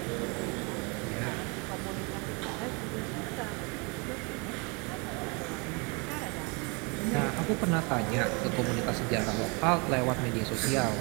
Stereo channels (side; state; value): left; quieter; 30.9 dB